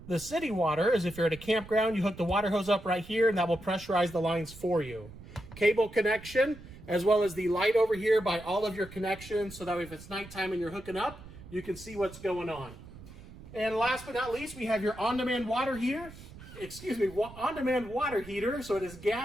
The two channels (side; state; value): right; noise; rumble, 17 dB below the sound